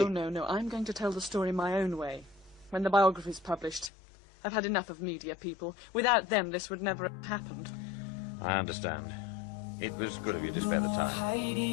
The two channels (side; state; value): right; drops out; at 3.9 s